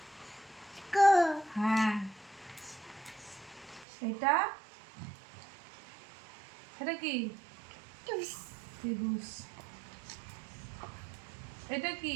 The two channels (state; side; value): drops out; left; at 3.9 s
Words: হ্যাঁ। এটা এটা কি? ত্রিভুজ। এটা কি?